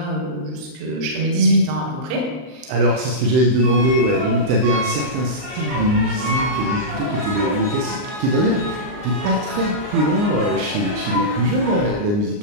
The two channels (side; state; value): left; late; 39 ms